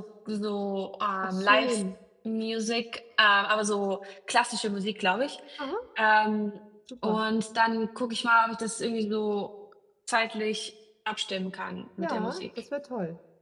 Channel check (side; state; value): both; identical; correlation 1.00